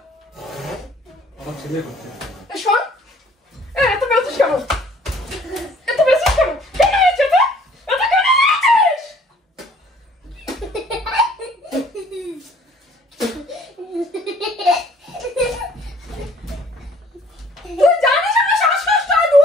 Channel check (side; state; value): both; normal; correlation 0.57